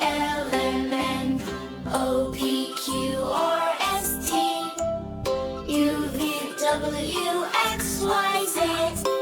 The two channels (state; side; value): identical; both; correlation 1.00